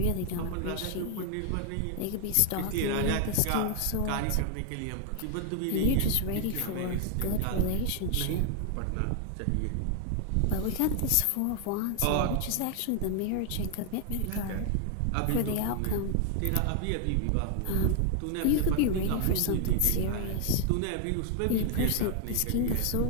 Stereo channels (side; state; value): both; different; correlation 0.00